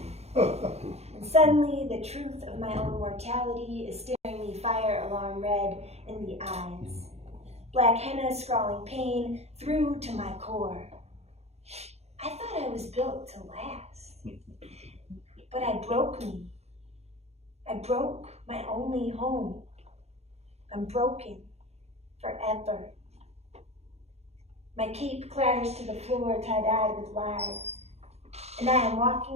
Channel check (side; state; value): left; late; 0.31 ms